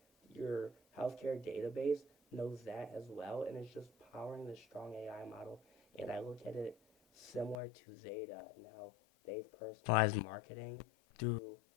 your healthcare database knows that as well, and it's just powering this strong AI model. And I look at it similar to Zeta and how they've personalized marketing through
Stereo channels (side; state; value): right; drops out; at 7.6 s